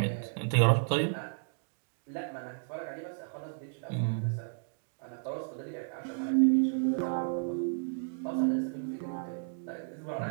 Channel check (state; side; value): silent; left; digital silence